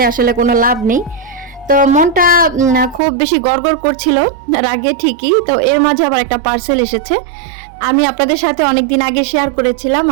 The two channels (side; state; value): left; drops out; at 3.0 s